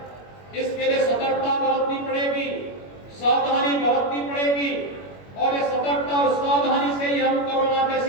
इसके लिए सतर्कता बरतनी पड़ेगी, सावधानी बरतनी पड़ेगी और इस सतर्कता और सावधानी से ही हम कोरोना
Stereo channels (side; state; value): right; late; 21 ms